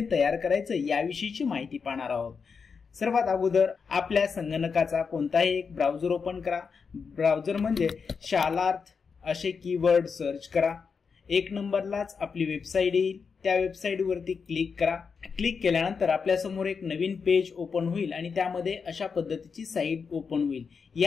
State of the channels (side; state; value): right; quieter; 5.6 dB